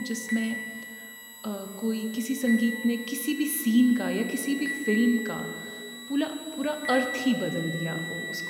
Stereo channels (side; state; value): both; identical; correlation 1.00